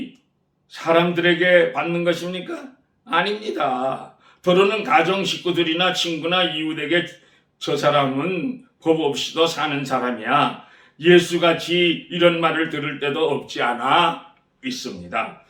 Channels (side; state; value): both; identical; correlation 1.00